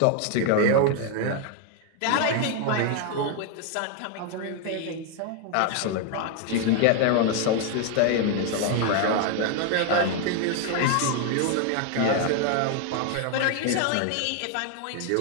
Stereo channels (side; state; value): both; different; correlation 0.01